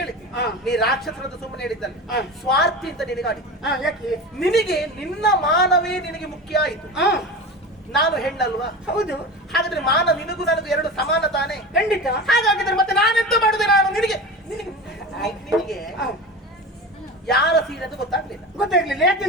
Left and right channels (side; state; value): both; normal; correlation 0.29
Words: ಹೇಳಿದ್ದೆ ನೀ ರಾಕ್ಷಸರದ್ದು ಸುಮ್ಮನೆ ಹೇಳಿದ್ದಲ್ಲ, ಸ್ವಾರ್ಥಿ ಅಂತ ನಿನಗಾಡಿ. ಯಾಕೆ? ನಿನಗೆ ನಿನ್ನ ಮಾನವೇ ನಿನಗೆ ಮುಖ್ಯ ಆಯಿತು. ನಾನು ಹೆಣ್ಣಲ್ವಾ? ಹೌದು. ಹಾಗಾದ್ರೆ ಮಾನ ನಿನಗೂ ನನಗೂ ಎರಡು ಸಮಾನ ತಾನೆ? ಖಂಡಿತ. ಹಾಗಾಗಿದ್ರೆ ಮತ್ತೆ ನಾನೆಂತ ಮಾಡುದೆ? ನಾನು ನಿನಗೆ ನಿನಗೆ ಯಾರ ಸೀರೆ ಅಂತ ಗೊತ್ತಾಗ್ಲಿಲ್ಲ.